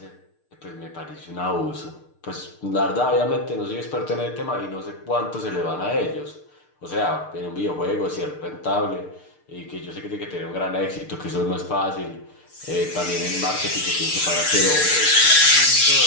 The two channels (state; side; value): late; right; 6.6 ms